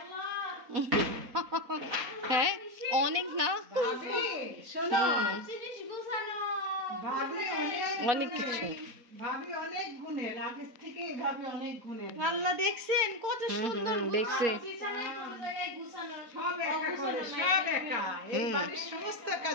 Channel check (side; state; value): left; late; 4.4 ms